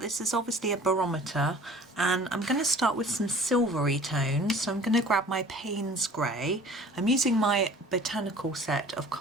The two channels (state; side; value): normal; both; correlation 0.48